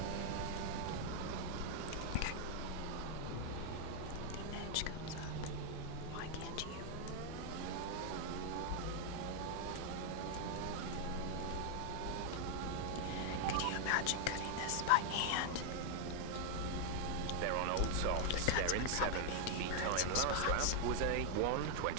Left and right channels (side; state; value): both; different; correlation 0.00